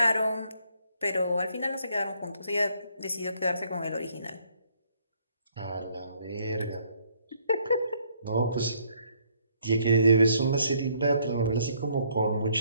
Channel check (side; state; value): both; inverted; correlation -0.68